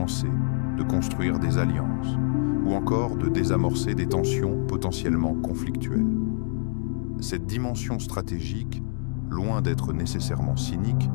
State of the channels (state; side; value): silent; right; 60 dB below the other